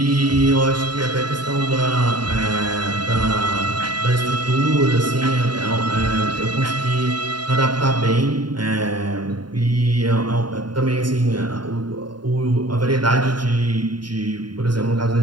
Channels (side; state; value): left; late; 0.71 ms